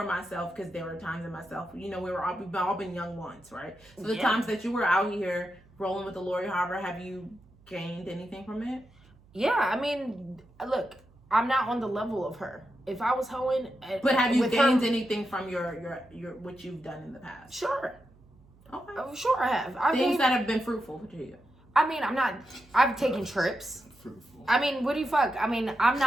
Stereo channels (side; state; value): right; noise; hum, 28 dB below the sound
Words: myself because there were times in myself. You know, we've all been young once, right? So the times that you were out here rolling with the Lori Harvey, have you gained anything from it? Yeah, I mean, look, I'm not on the level of her. If I was hoeing, but have you gained anything from your what you've done in the past? Sure. Okay. Sure, I have. Things that have been fruitful to you. I mean, I've taken trips. Fruitful. I mean, what do you fuck? I mean, I'm